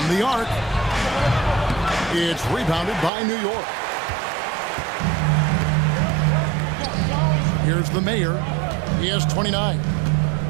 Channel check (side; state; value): left; drops out; at 3.1 s